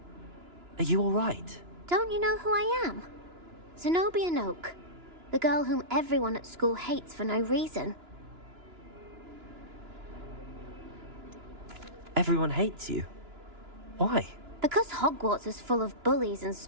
Are you all right? Don't you know who I am? Zenobia Noak, the girl whom everyone at school hates for no reason. Everyone hates you. Why? Because Hogwarts is full of bullies and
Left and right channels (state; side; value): late; left; 2.9 ms